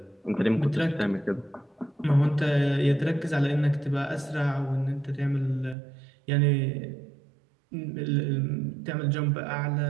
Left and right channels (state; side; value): drops out; left; at 5.8 s